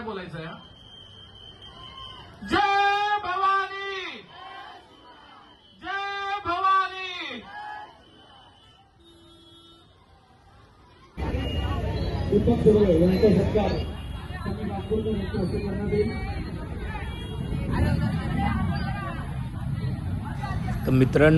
बोलायचं आहे. जय भवानी, जय भवानी. दीपक सुर्वे यांचा सत्कार त्यांनी नागपूरच्या मुख्य हस्ते करण्यात येईल. तर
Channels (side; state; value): both; identical; correlation 1.00